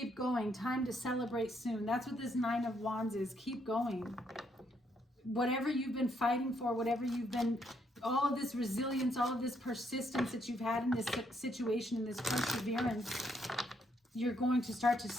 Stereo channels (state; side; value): normal; both; correlation 0.74